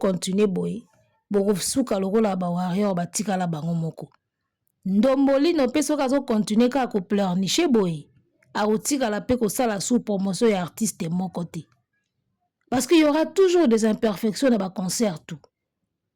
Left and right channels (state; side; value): identical; both; correlation 1.00